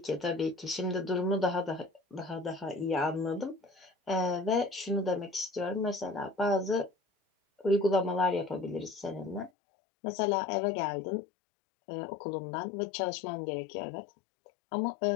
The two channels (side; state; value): right; drops out; at 9.5 s